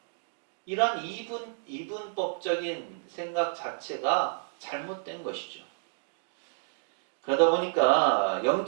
이런 이분법적인 생각 자체가 잘못된 것이죠. 그러다 보니까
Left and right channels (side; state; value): left; silent; digital silence